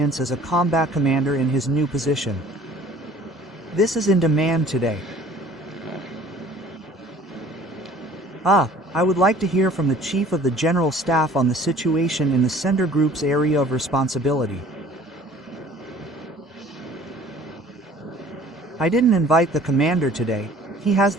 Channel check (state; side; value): normal; both; correlation 0.51